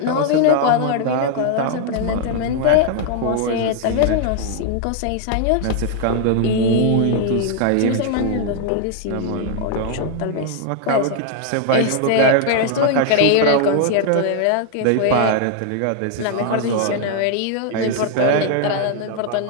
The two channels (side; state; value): both; different; correlation 0.00